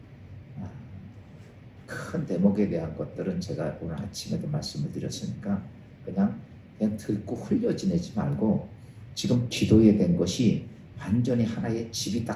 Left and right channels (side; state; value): both; identical; correlation 1.00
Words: 큰 대목에 대한 것들은 제가 오늘 아침에도 말씀을 드렸으니까 그냥 듣고 흘려 지내지 말고, 지금 기도에 된 것이 완전히 하나의 집이